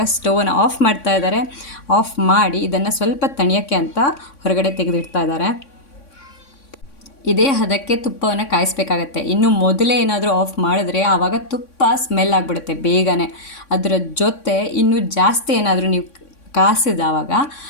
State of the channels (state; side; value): late; right; 3.6 ms